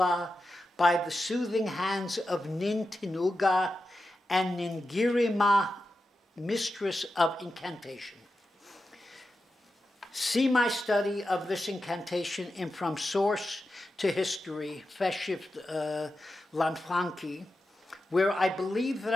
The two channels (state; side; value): normal; both; correlation 0.91